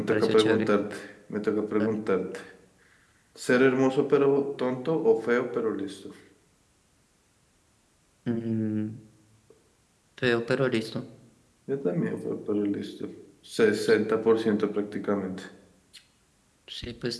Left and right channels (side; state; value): both; identical; correlation 1.00